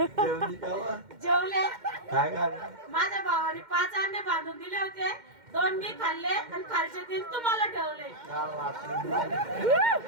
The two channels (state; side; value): late; left; 2.1 ms